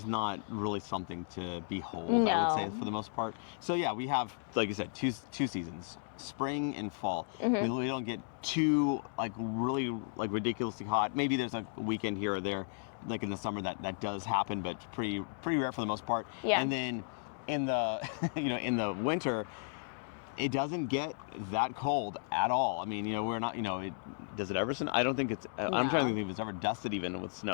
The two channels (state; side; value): silent; right; digital silence